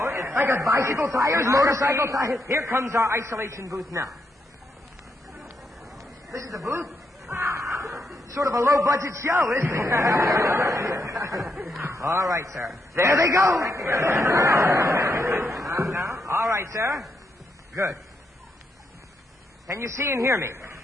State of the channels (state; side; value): normal; both; correlation 0.80